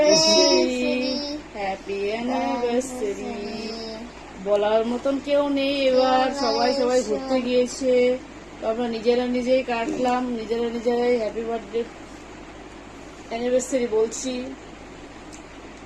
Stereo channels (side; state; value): both; identical; correlation 1.00